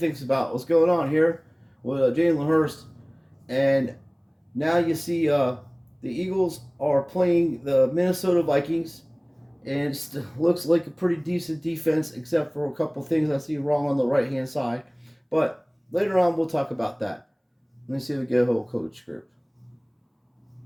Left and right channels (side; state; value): both; identical; correlation 1.00